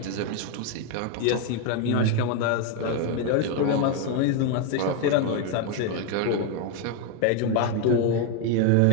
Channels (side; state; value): both; different; correlation 0.01